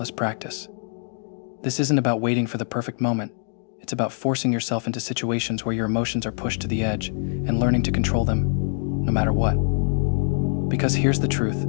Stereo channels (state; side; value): silent; right; digital silence